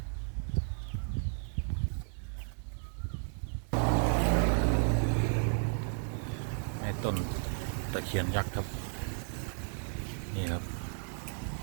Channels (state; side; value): silent; left; 55 dB below the other